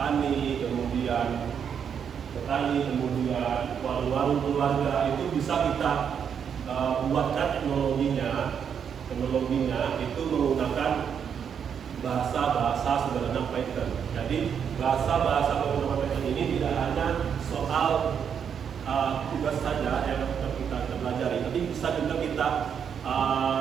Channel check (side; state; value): left; quieter; 7.6 dB